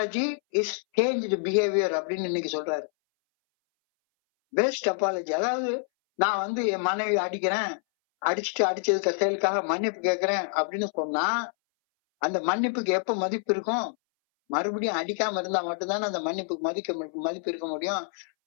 is changed behavior அப்படின்னு இன்னைக்கு சொல்றாரு. பெஸ்ட் அப்பாலஜி, அதாவது நான் என் மனைவி அடிச்சதுக்கு செயலுக்காக மன்னிப்பு கேட்கிறேன் அப்படின்னு சொன்னா அந்த மன்னிப்புக்கு எப்ப மதிப்பு இருக்கும்? மறுபடியும் அடிக்காம இருந்தா மட்டும்தானே அந்த மன்னிப்புக்கு மதிப்பு இருக்க முடியும்.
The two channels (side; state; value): right; silent; 60 dB below the other